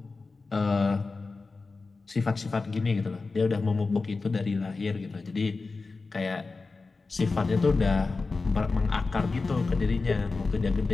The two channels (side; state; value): right; quieter; 3.9 dB